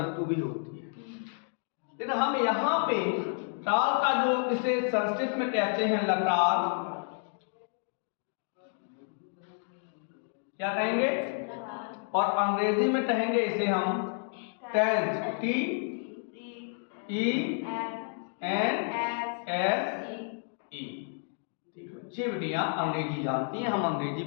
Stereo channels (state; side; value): silent; right; 57 dB below the other